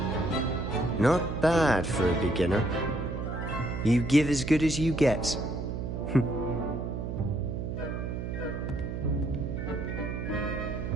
Not bad for a beginner. You give as good as you get.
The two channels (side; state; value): right; noise; hum, 4 dB below the sound